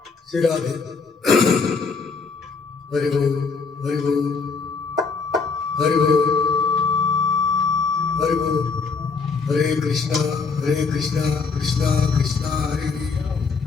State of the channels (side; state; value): right; quieter; 4.9 dB